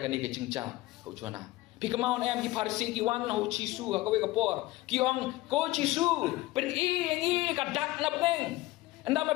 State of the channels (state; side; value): quieter; right; 18.7 dB